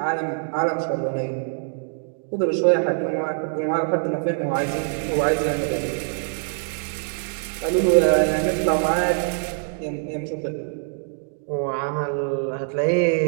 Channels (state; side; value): silent; left; digital silence